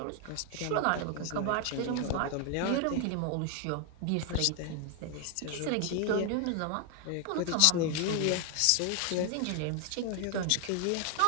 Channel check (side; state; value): both; different; correlation 0.00